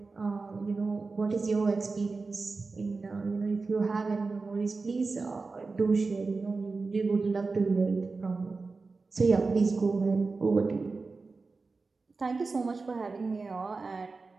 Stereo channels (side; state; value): left; quieter; 4.0 dB